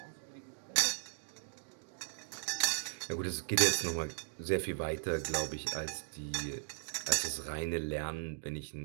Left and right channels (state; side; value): silent; left; digital silence